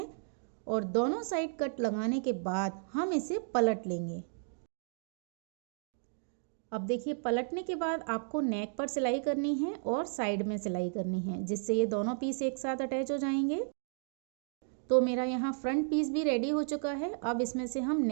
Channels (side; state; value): left; silent; digital silence